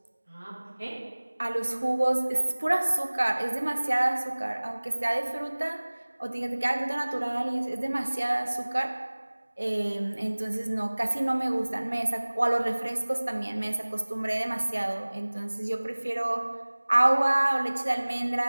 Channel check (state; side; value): inverted; both; correlation -1.00